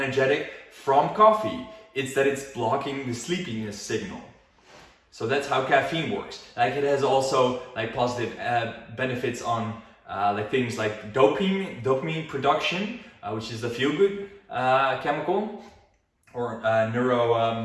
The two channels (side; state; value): both; identical; correlation 1.00